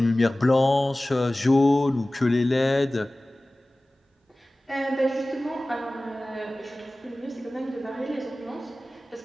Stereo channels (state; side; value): normal; both; correlation 0.98